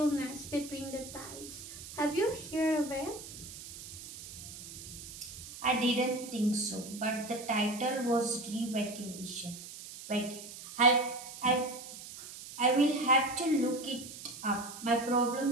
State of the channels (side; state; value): right; noise; hiss, 13 dB below the sound